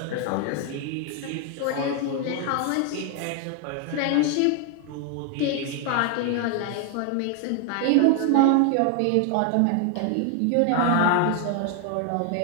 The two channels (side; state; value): both; different; correlation 0.00